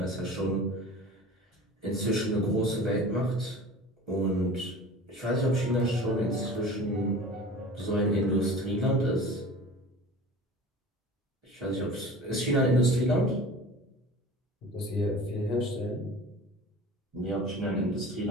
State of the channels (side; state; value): both; normal; correlation 0.39